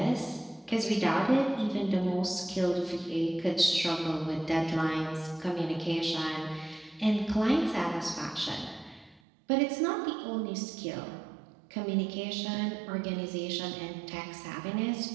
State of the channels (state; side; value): drops out; left; at 9.2 s